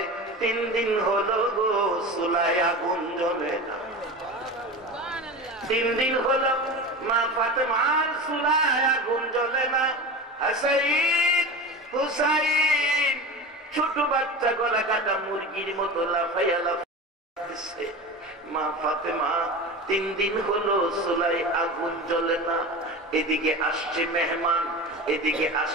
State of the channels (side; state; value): both; normal; correlation 0.29